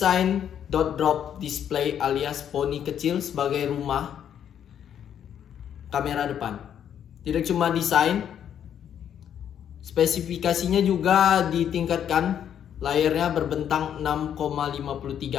dot drop display alias poni kecil sebagai rumah kamera depan. Tidak cuma desain, spesifikasinya juga ditingkatkan. Layarnya berbentang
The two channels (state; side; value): quieter; right; 9.3 dB